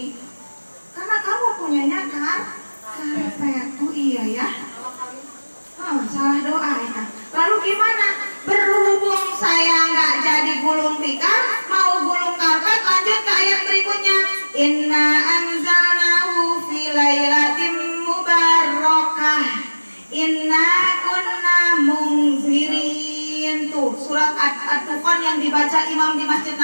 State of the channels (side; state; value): both; inverted; correlation -1.00